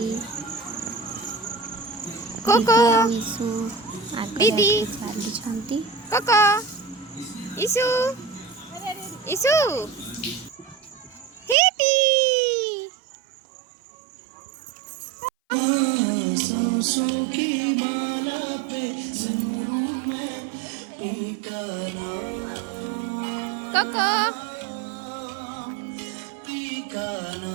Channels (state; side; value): drops out; left; at 11.6 s